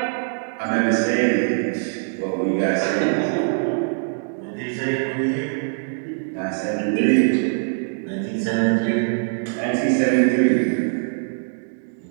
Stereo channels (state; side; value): silent; left; digital silence